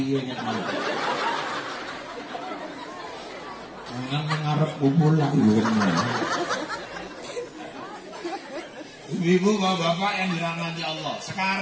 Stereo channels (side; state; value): both; identical; correlation 1.00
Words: ya kan. Jangan mengarep bubul lagi. Ibu bapak yang dirahmati Allah.